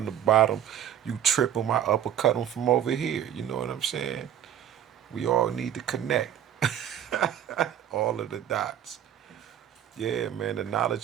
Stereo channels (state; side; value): quieter; left; 10.3 dB